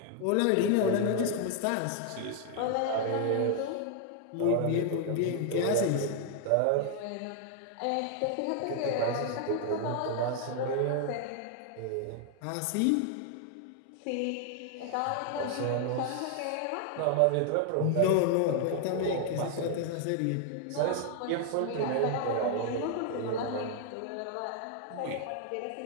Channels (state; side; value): different; both; correlation 0.00